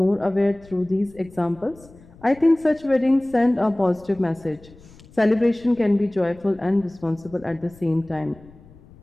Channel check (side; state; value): left; noise; rumble, 24 dB below the sound